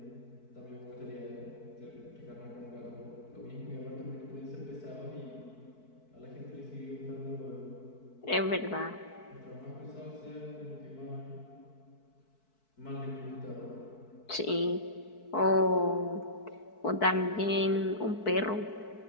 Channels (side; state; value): right; late; 4.6 ms